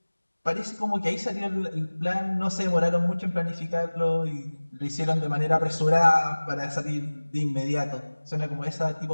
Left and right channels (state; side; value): inverted; both; correlation -1.00